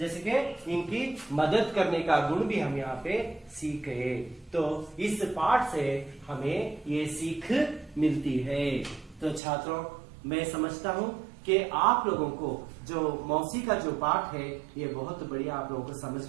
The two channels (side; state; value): left; drops out; at 9.4 s